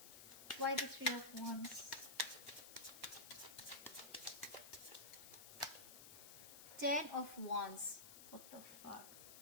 Why the Three of Wands? Ten of Wands. What the fuck?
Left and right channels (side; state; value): left; noise; hiss, 12 dB below the sound